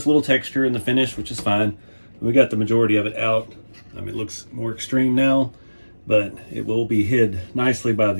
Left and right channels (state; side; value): inverted; both; correlation -1.00